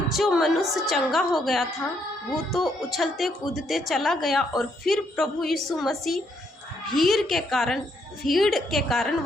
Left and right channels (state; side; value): normal; both; correlation 0.73